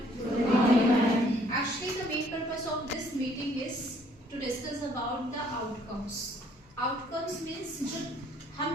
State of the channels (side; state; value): both; normal; correlation 0.62